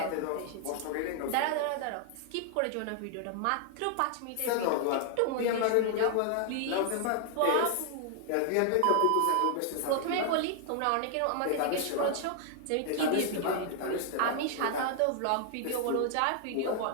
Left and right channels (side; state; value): both; different; correlation 0.00